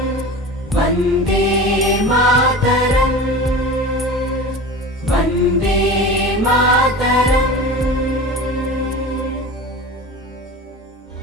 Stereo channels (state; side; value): normal; both; correlation 0.33